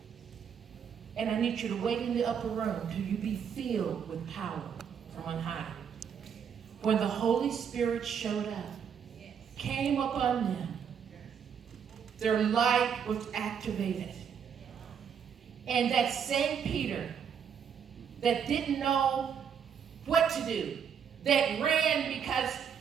and I need you to wait in the upper room till you be filled with power from on high. When the Holy Spirit showed up, came upon them, their light was activated. And that same Peter that didn't know what to do, that ran because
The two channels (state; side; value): quieter; left; 7.6 dB